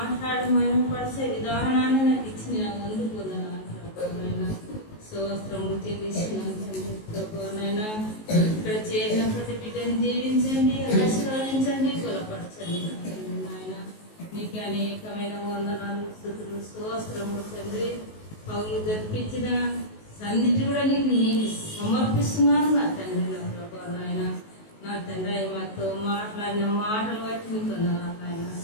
పరిచే విధానాన్ని నాకు ఇచ్చిన ముందు పొందనాను ప్రభా నాయన. స్తోత్రము చెల్లిస్తున్నాను తండ్రి ప్రభా నాయన. ఇక్కడ చేరిన ప్రతి బిడ్డని దీవించండి, ఆశీర్వదించండి, బలపరచండి నాయన. నీకు అనేకమైన వందనాలు, స్తుతులు, స్తోత్రము తండ్రి. పౌలు జరిపించిన సన్నిధి కూడా నీకు సమర్పిస్తున్నాను నా తండ్రి, నా ప్రభా నాయన. నా తండ్రి మాతో మాట్లాడిన మాటలు బట్టి నీకు నాయన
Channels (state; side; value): late; right; 19 ms